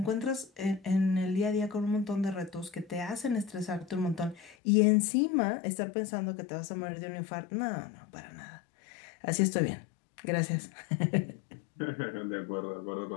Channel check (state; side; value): drops out; right; at 4.5 s